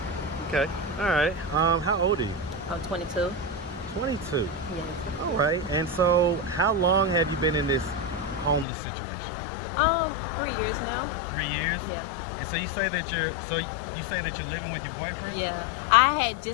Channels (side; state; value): right; drops out; at 8.7 s